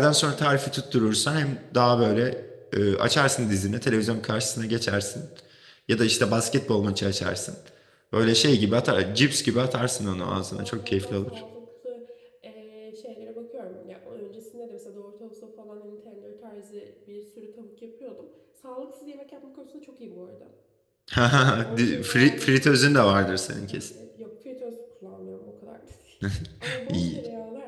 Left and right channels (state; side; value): identical; both; correlation 1.00